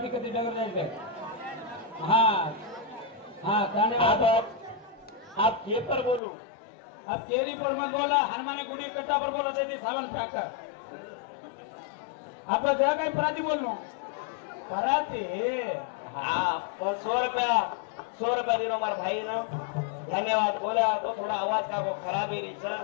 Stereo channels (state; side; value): drops out; right; at 6.2 s